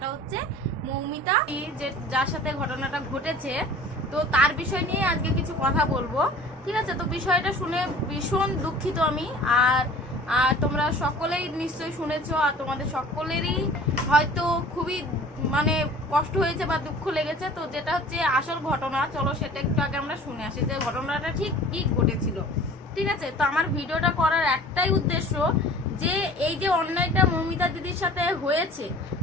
হচ্ছে মৌমিতা, যে যার সাথে ঘটনাটা ঘটেছে। তো তার বিষয় নিয়ে আজকে কিছু কথা বলবো, ঠিক আছে। তো বিষয়টা শুনে ভীষণ দুঃখিত আমি। আর তোমরা সকলেই নিশ্চয়ই শুনেছো, আর তোমাদের সকলেরই হয়তো খুবই মানে কষ্ট হয়েছে বা দুঃখ লেগেছে। তো যেটা হচ্ছে আসল ঘটনা, চলো সেটা একটু আগে আমরা শুনে আসি যে ঘটনাটা ঠিক কি ঘটেছিল, ঠিক আছে। তো আমার ভিডিওটা করার একটাই উদ্দেশ্য যে এই যে অন্যায়টা মৌমিতা দিদির সাথে হয়েছে,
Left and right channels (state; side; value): normal; both; correlation 0.45